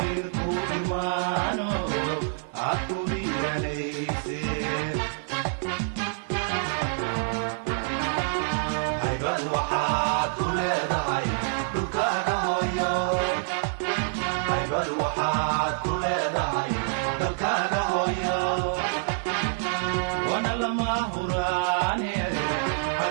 كورمانو عطو هيرانيسي هيبad waxaad ku leedahay dhulkaaga hooyo haybad waxaad ku leedahay dalkaaga hooyo wana lama huraane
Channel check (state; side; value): silent; left; 60 dB below the other